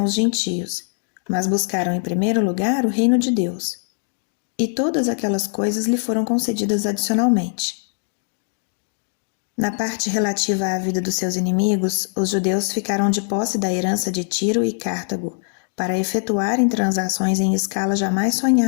os gentios, mas buscaram em primeiro lugar o reino de Deus. E todas aquelas coisas lhe foram concedidas adicionalmente. Na parte relativa à vida dos seus inimigos, os judeus ficaram de posse da herança de Tiro e Cartago, para efetuarem transações em escala jamais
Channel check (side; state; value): right; silent; 65 dB below the other